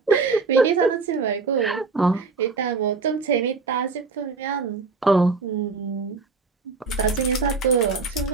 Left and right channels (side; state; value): left; quieter; 4.3 dB